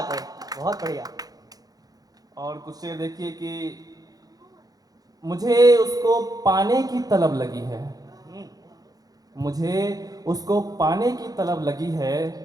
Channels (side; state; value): left; late; 0.18 ms